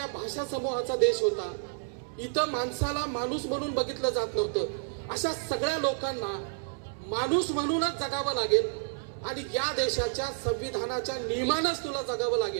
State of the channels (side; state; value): left; silent; 58 dB below the other